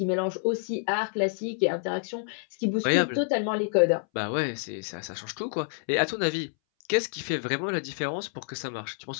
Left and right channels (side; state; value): right; silent; 59 dB below the other